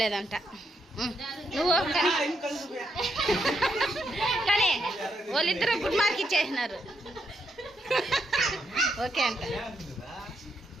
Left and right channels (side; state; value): both; normal; correlation 0.80